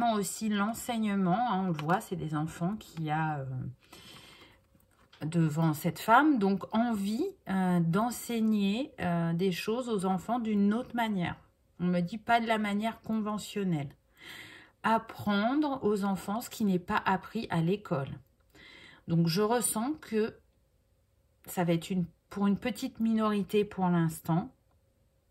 aussi l'enseignement. Hein, on le voit, c'est des enfants qu'il y a devant cette femme. Donc, envie d'enseigner des choses aux enfants d'une autre manière. On me dit pas de la manière conventionnelle. Apprendre aux enfants ce qui n'est pas appris à l'école. Donc, je ressens que ça va être pour une petite minorité pour l'instant.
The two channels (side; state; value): both; identical; correlation 1.00